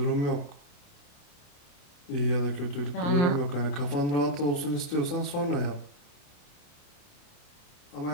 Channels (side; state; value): right; late; 28 ms